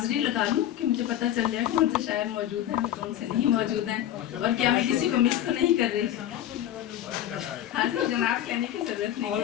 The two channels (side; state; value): right; quieter; 11.8 dB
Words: लगा लूं कि मुझे पता चल जाए कौन से शायर मौजूद हैं कौन से नहीं मौजूद हैं और क्या मैं किसी को मिस तो नहीं कर रही। हाजिर जनाब कहने की जरूरत नहीं है,